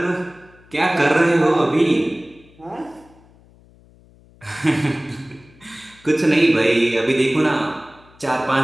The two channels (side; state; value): left; noise; hum, 27 dB below the sound